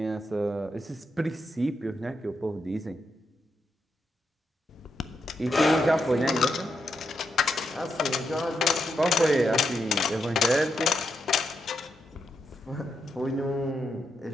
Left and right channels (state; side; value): normal; both; correlation 0.83